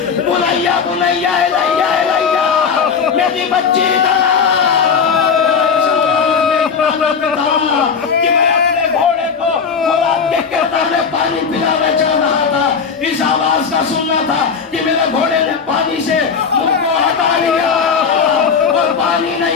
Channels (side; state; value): right; quieter; 6.0 dB